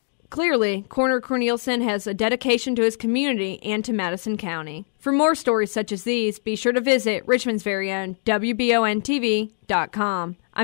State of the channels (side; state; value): right; silent; 64 dB below the other